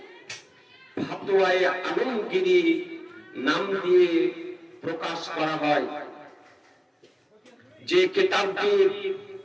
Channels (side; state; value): both; identical; correlation 1.00